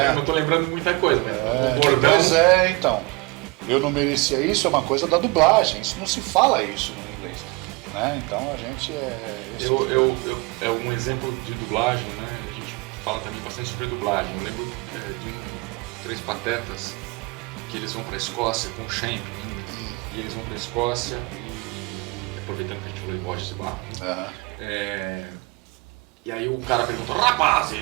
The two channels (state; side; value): quieter; left; 26.3 dB